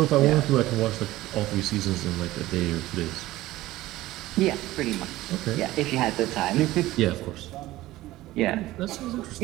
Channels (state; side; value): quieter; left; 16.8 dB